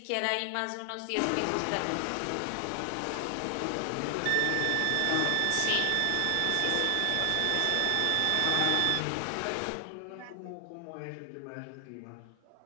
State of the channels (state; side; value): different; both; correlation 0.00